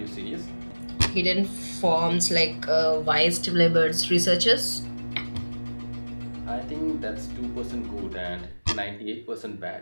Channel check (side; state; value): both; inverted; correlation -1.00